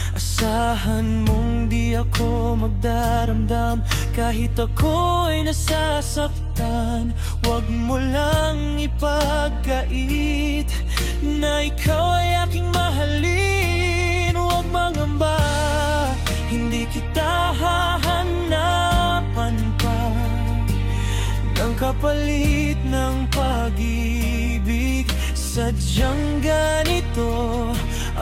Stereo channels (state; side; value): identical; both; correlation 1.00